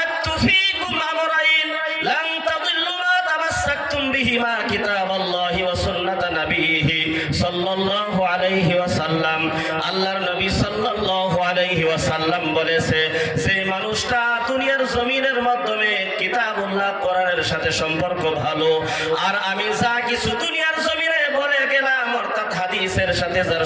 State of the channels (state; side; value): identical; both; correlation 1.00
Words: ফীকুম আমরাইন লান তাদিল্লু মা তামাসসাকতুম বিহি বিমা কিতাবাল্লাহি ওয়া সুন্নাত নবিহি সাল্লাল্লাহু আলাইহি ওয়াসাল্লাম। আল্লাহর নবী সাল্লাল্লাহু আলাইহি ওয়াসাল্লাম বলেছে, যে মানুষটা দুনিয়ার জমিনের মাধ্যমে কিতাবুল্লাহ কোরআনের সাথে সম্পর্ক ভালো, আর আমি যা কিছু দুনিয়ার জমিনে বলে গেলাম অর্থাৎ হাদিসের সাথে যার